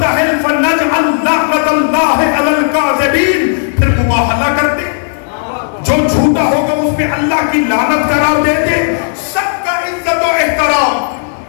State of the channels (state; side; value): silent; right; digital silence